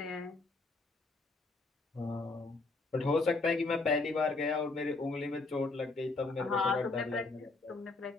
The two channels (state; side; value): quieter; right; 3.5 dB